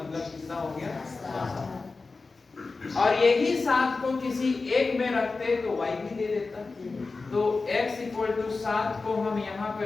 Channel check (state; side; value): quieter; right; 3.9 dB